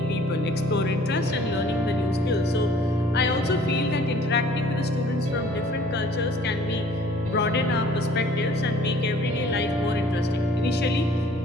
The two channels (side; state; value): both; normal; correlation 0.54